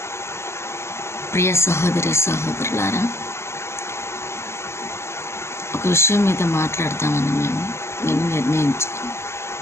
ప్రియ సహోదరి సహోదరులారా, ఒక విషయం మీద మాట్లాడతామని నేను నిర్ణయించుకుని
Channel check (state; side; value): late; right; 0.13 ms